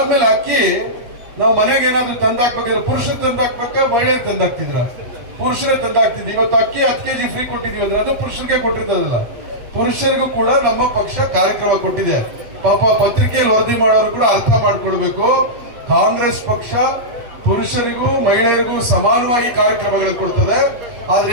ಅಕ್ಕಿ ನಾವು ಮನೆಗೆ ಏನಾದ್ರು ತಂದಾಕ್ಬೇಕಾದ್ರೆ ಪುರುಷರು ತಂದಾಕ್ಬೇಕಾ ಮಹಿಳೆಯರು ತಂದಾಕ್ತಿದ್ರ? ಪುರುಷರೇ ತಂದಾಕ್ತಿದ್ವಿ. ಇವತ್ತು ಅಕ್ಕಿ 10 kg ಫ್ರೀ ಕೊಟ್ಟಿದೀವಿ ಅಂದ್ರೆ ಅದು ಪುರುಷರಿಗೆ ಕೊಟ್ಟಿರ್ತದಲ್ಲ, ಪುರುಷರಿಗೂ ಕೂಡ ನಮ್ಮ ಪಕ್ಷ ಕಾರ್ಯಕ್ರಮ ಕೊಟ್ಟಿದೆ. ಪಾಪ ಪತ್ರಿಕೆಯಲ್ಲಿ ವರದಿ ಮಾಡೋರು ಕೂಡ ಅರ್ಥ ಮಾಡ್ಕೊಳ್ಬೇಕು, ಕಾಂಗ್ರೆಸ್ ಪಕ್ಷ ಪುರುಷರಿಗೂ ಮಹಿಳೆಯರಿಗೂ ಸಮಾನವಾಗಿ ಕಾರ್ಯಕ್ರಮಗಳು ಕೊಡ್ತದೆ. ಆದ್ರೆ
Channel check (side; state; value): left; late; 8.5 ms